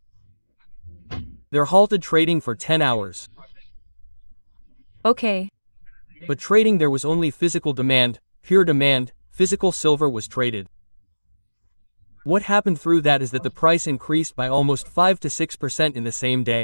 They're halted trading for 10 hours. Okay. But trading, there was only physical demand, pure demand, physical silver was traded. What happened through that is that the price increased by almost 5 to 6% in the same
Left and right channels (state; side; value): inverted; both; correlation -1.00